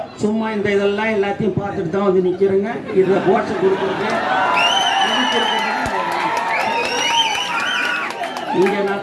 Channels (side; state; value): both; identical; correlation 1.00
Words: சும்மா இந்த இதெல்லாம் எல்லாத்தையும் பார்த்துட்டு தான் வந்து நிக்கிறேங்க. இதுல போட்ஸ் கொடுக்குறது இங்க